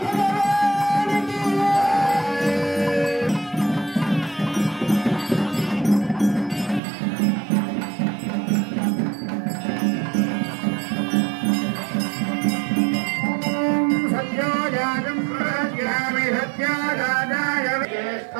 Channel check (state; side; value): drops out; left; at 6.8 s